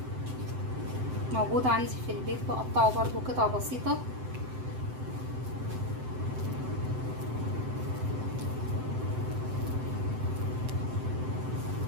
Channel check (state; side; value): late; left; 7.8 ms